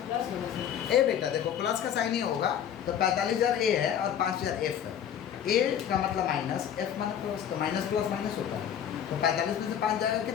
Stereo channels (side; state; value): right; quieter; 9.2 dB